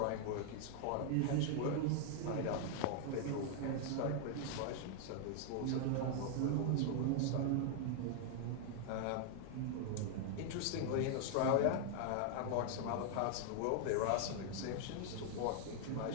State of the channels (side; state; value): both; different; correlation 0.00